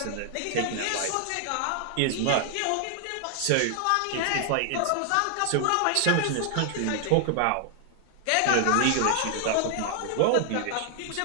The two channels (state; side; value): different; both; correlation 0.00